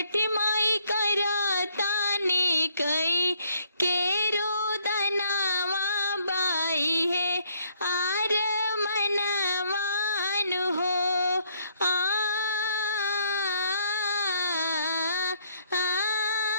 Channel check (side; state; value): both; inverted; correlation -0.67